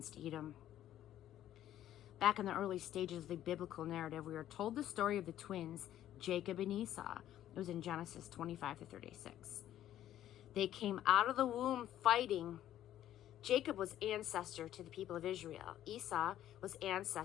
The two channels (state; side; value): quieter; right; 12.2 dB